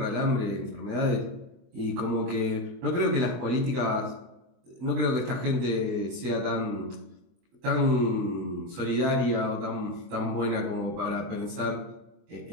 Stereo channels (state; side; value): late; left; 24 ms